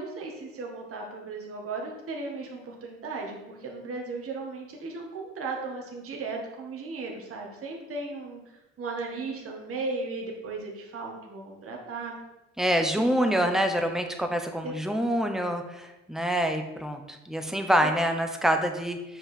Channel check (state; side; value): normal; both; correlation 0.67